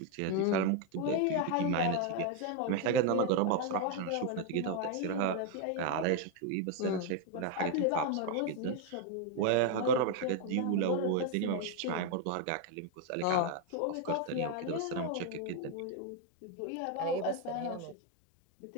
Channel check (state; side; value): different; both; correlation 0.01